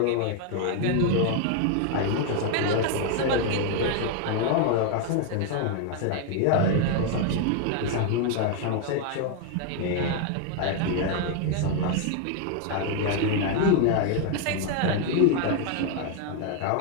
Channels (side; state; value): both; different; correlation 0.00